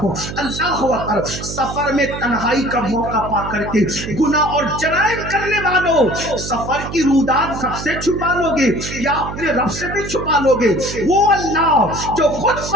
اللہ اکبر، سفر میں تنہائی کا موقع پا کر کے گناہ اور جرائم کرنے والوں، سفر کی رودات سب سے چھپا لو گے یا اپنے رب سے بھی چھپا لو گے؟ وہ اللہ جو خود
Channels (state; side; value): noise; right; hum, 8 dB below the sound